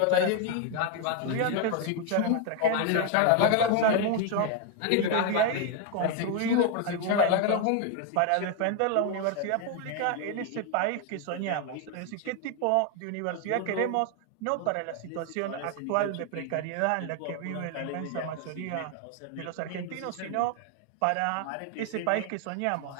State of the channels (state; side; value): different; both; correlation 0.01